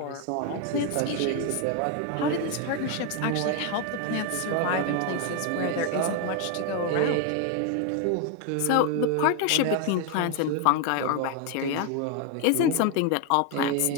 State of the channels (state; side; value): different; both; correlation 0.01